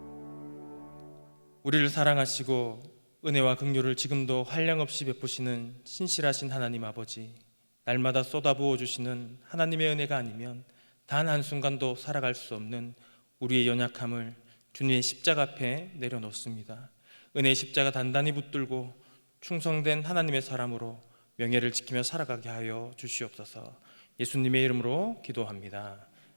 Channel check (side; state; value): both; inverted; correlation -1.00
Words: 우리를 사랑하시고 은혜와 긍휼을 지금도 한량없이 베푸시는 신실하신 하나님 아버지, 날마다 쏟아부어 주시는 하나님의 은혜가 아니면 단 한순간도 살아갈 수 없는 우리의 연약함을 주님의 십자가 앞에 내려놓습니다. 은혜의 십자가 단단히 붙들고 충성된 하나님의 사람으로 명예를 지키며 살아가게 하여 주시옵소서. 예수님의 이름으로 기도합니다.